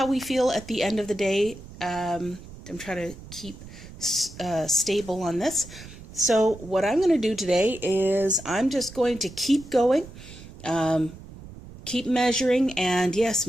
we feel at the end of the day. I'm trying to keep stable on this. So what I'm going to do today is I'm just going to keep going, keep measuring, and yes,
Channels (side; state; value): right; noise; rumble, 16 dB below the sound